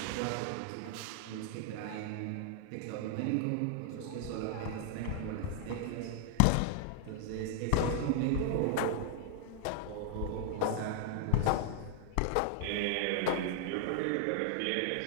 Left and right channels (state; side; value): different; both; correlation 0.00